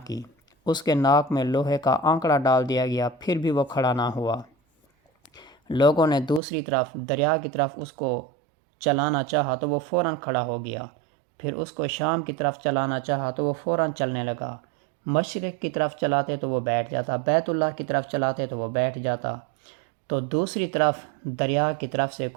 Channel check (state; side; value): drops out; left; at 6.4 s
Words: کی۔ اس کے ناک میں لوہے کا آنکڑا ڈال دیا گیا، پھر بھی وہ کھڑا نہ ہوا۔ لوگوں نے دوسری طرف دریا کی طرف اس کو چلانا چاہا تو وہ فوراً کھڑا ہو گیا۔ پھر اس کو شام کی طرف چلانا چاہا تو وہ فوراً چلنے لگا۔ مشرق کی طرف چلاتے تو وہ بیٹھ جاتا، بیت اللہ کی طرف چلاتے تو وہ بیٹھ جاتا۔ تو دوسری طرف دریا کی طرف سے